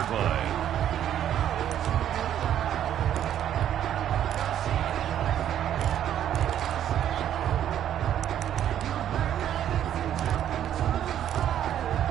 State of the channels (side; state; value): left; quieter; 10.6 dB